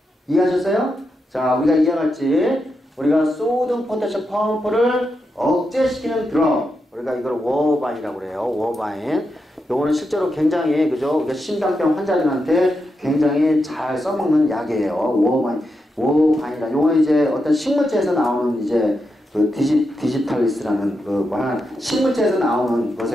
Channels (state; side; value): normal; both; correlation 0.86